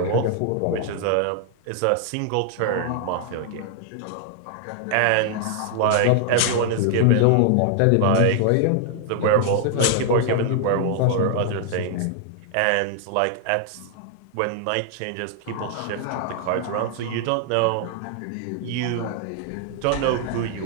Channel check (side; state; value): both; different; correlation 0.00